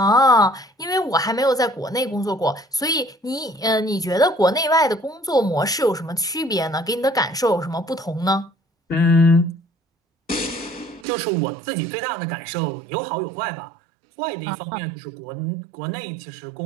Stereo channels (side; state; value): left; drops out; at 11.1 s